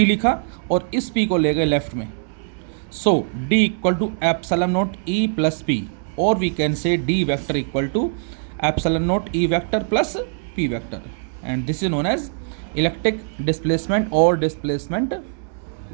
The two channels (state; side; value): silent; left; 64 dB below the other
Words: लिखा और इस P को ले गए लेफ्ट में। सो D = ε0 E + P, और we can say D vector = ε0 E vector + P vector, and this is known as electric displacement और डिस्प्लेसमेंट